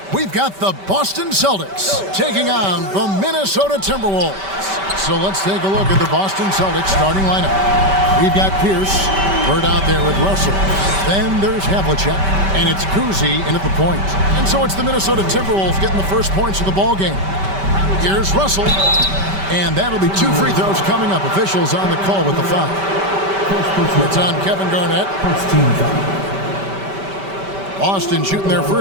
We've got the Boston Celtics taking on the Minnesota Timberwolves. So let's take a look at the Boston Celtics starting lineup. We've got Pierce, Bird out there with Russell. Then there's Havlicek, and it's Kuzi in at the point. And so it's the Minnesota Timberwolves getting the first points of the ball game. Here's Russell, and that'll be 2 free throws coming up. Officials on the call with the foul. It's on Kevin Garnett. Boston shooting their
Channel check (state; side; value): late; left; 5.1 ms